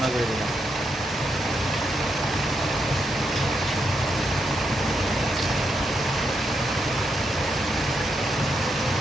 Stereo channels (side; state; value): both; normal; correlation 0.82